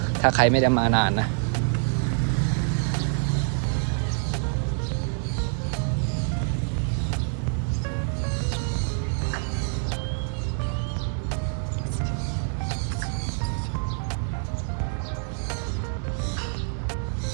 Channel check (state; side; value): silent; left; 60 dB below the other